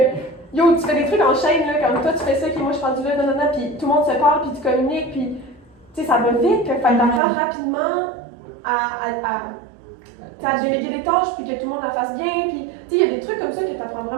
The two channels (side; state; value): left; drops out; at 7.2 s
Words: yo, tu fais des trucs en chaîne, là, comme toi tu fais ça, puis moi je suis rendu là, puis tout le monde se parle, puis tu communiques, puis, tu sais, ça va vite, fait que t'apprends rapidement à déléguer des tâches, puis que tout le monde la fasse bien, puis, tu sais, il y a des trucs comme ça que tu apprends